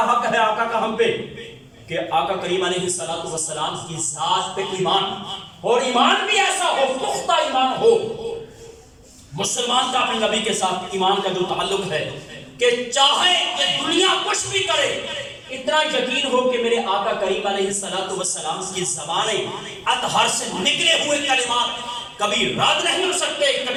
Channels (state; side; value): identical; both; correlation 1.00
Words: حق ہے آقا کا ہم پہ کہ آقا کریم علیہ السلام کی ذات پہ ایمان، اور ایمان بھی ایسا ہو، پختہ ایمان ہو۔ مسلمان کا اپنے نبی کے ساتھ ایمان کا جو تعلق ہے کہ چاہے کہ دنیا کچھ بھی کرے، اتنا یقین ہو کہ میرے آقا کریم علیہ السلام کی زبانیں اطہر سے نکلے ہوئے کلمات کبھی رد نہیں ہو سکتے،